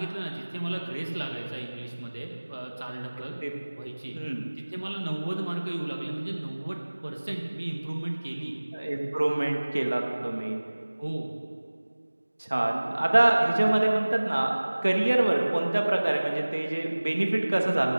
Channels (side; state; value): both; inverted; correlation -1.00